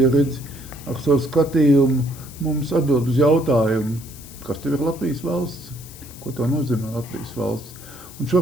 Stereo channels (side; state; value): left; noise; hiss, 18 dB below the sound